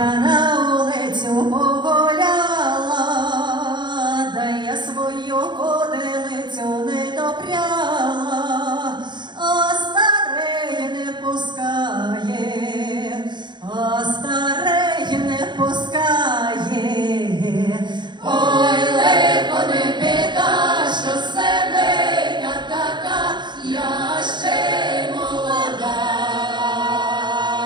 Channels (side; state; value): left; late; 0.22 ms